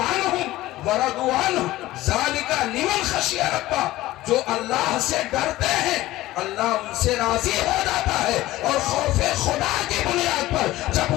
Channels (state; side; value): quieter; right; 16.7 dB